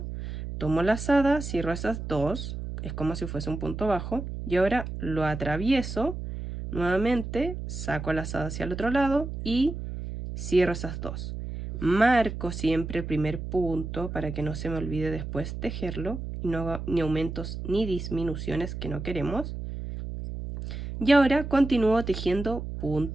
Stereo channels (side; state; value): right; noise; hum, 7 dB below the sound